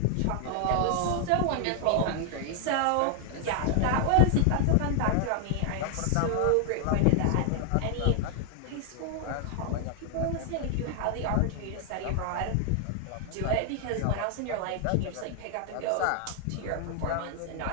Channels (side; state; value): both; different; correlation 0.00